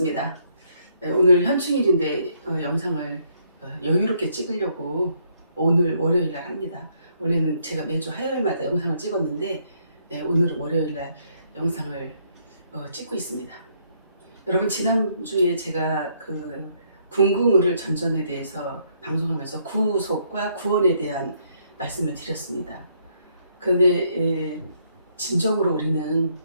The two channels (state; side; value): inverted; both; correlation -0.70